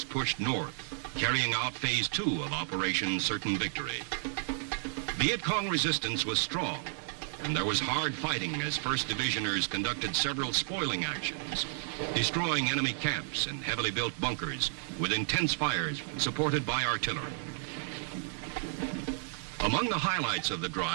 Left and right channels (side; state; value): left; silent; 56 dB below the other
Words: pushed north, carrying out Phase 2 of Operation Certain Victory. Viet Cong resistance was strong, and there was hard fighting as 1st Divisioners conducted several spoiling actions, destroying enemy camps and heavily built bunkers with intense fires supported by artillery. Among the highlights of the